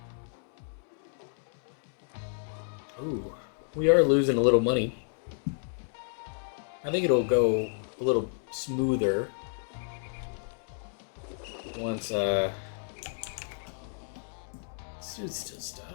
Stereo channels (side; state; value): right; silent; digital silence